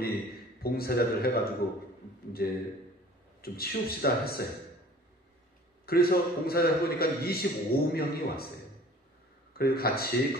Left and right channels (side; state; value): both; normal; correlation 0.48